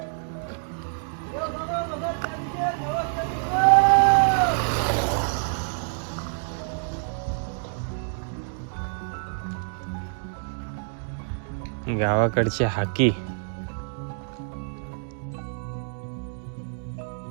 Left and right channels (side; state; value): left; silent; 60 dB below the other